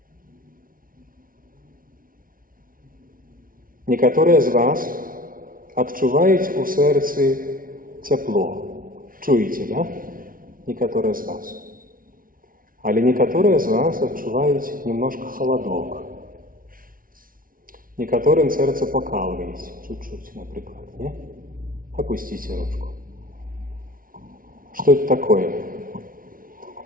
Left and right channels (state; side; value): late; left; 0.41 ms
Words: Некоторые из вас отчувають у серці тепло. Чуете, да? Некоторые из вас. Але некоторые из вас отчувають немножко холодок. Некоторым сердце покалывает чуть-чуть, например. Не? Опустите ручку. Что это такое?